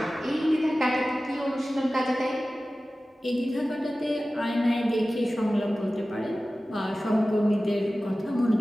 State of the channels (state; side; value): normal; both; correlation 0.96